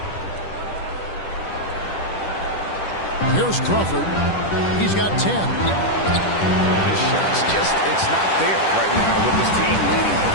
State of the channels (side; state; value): right; late; 10 ms